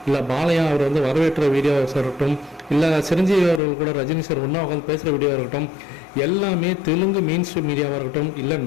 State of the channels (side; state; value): right; drops out; at 3.6 s